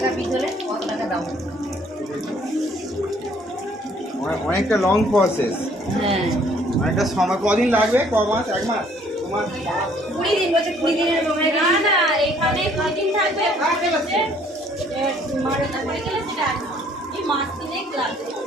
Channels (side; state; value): both; normal; correlation 0.61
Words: পিস হলে কত টাকা দাম? অনেকটা লং প্রসেস, হ্যাঁ অনেকটা সময়। কদিন লাগবে? ক মাস? 1 মাস? 2 মাস? 20 দিন বলছে 20 দিনের সময় না না এখানে কদিন থাকবে মারে পড়ে গেলে সেটা এই মাছ কিনে লাগবে